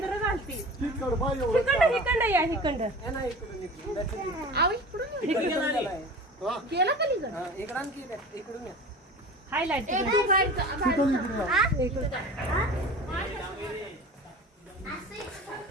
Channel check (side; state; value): both; normal; correlation 0.37